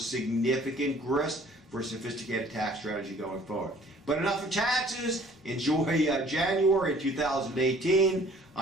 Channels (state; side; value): normal; both; correlation 0.54